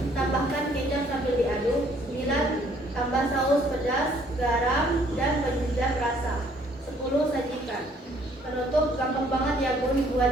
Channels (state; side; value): normal; both; correlation 0.62